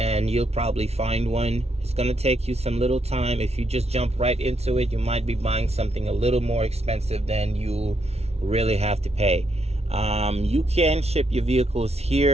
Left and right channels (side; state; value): left; late; 0.31 ms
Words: you'll probably find one. It's going to take you some little time. If you just jump right into it, you might be buying something a little more expensive than you really have to pay. You can ship your vehicles